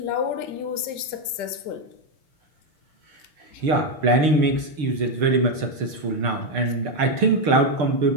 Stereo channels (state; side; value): late; left; 6.7 ms